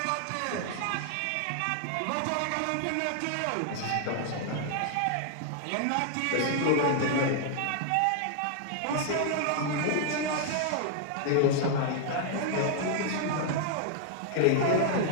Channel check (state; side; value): different; both; correlation 0.00